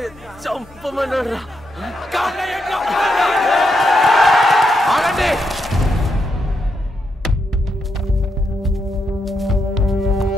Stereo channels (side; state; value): both; normal; correlation 0.81